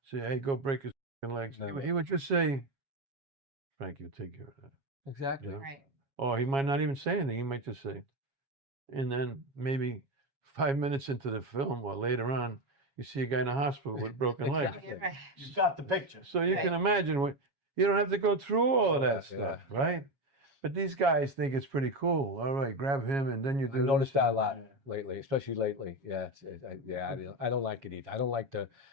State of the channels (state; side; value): late; left; 7.3 ms